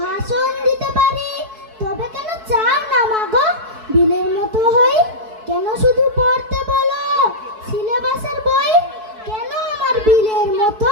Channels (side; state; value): left; late; 4.6 ms